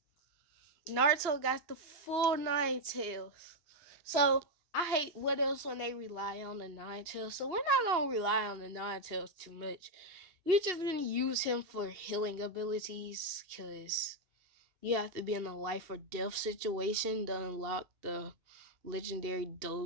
Naruto got the full Nine Tails. So I hate what else when they rely on the Nine Tails. So we're not gonna rely on the Nine Tails too much. We're just gonna use him for healing abilities, because you have to be in a life or death situation to unlock the legendary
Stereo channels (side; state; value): left; late; 2.8 ms